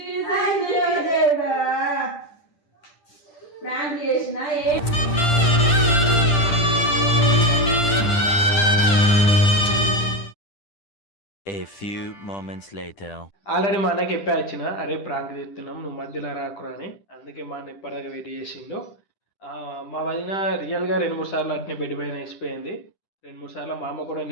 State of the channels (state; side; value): late; right; 10 ms